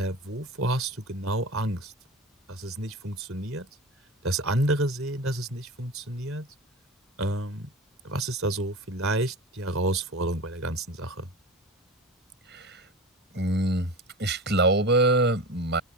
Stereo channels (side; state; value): both; normal; correlation 0.31